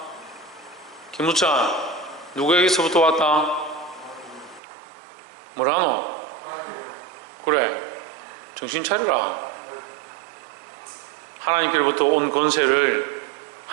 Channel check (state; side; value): drops out; left; at 4.6 s